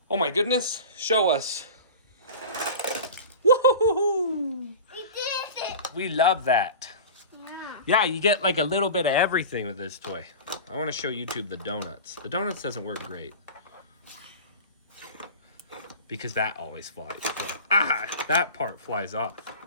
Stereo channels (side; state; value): both; inverted; correlation -0.33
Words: Oh, my goodness. Show us. Woohoo! We did it. We love that. Yeah. Yeah, you get like a little bit of everything with this toy. I want to show YouTube the donuts. The donuts doesn't work great. Because that always flies. Ah, that part flies off.